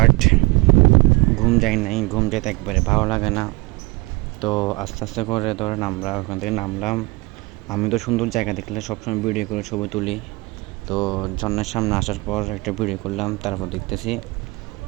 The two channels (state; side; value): quieter; left; 24.2 dB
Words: ঘুম যায় নাই। ঘুম যেতে একবারে ভালো লাগে না। তো আস্তে আস্তে করে ধরেন আমরা ওখান থেকে নামলাম। আমি তো সুন্দর জায়গা দেখলে সবসময় ভিডিও করে ছবি তুলি। তো ঝর্ণার সামনে আসার পর একটা ভিডিও করলাম। তারপর দেখতেছি